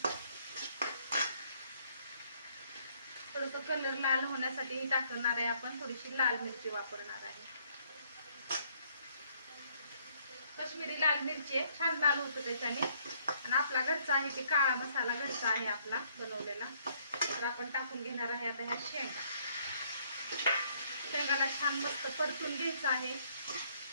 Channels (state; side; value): inverted; both; correlation -0.66